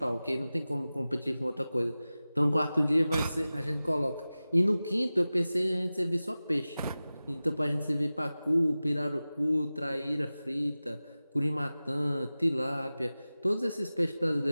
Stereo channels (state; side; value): inverted; both; correlation -0.96